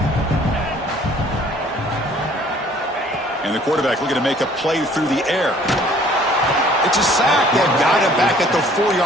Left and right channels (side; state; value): both; normal; correlation 0.56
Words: And the quarterback looking to make a play through the air. It's a sack. They've got him back at the